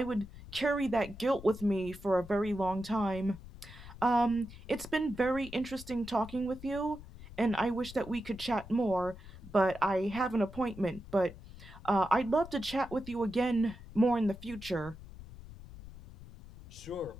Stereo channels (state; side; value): noise; left; rumble, 16 dB below the sound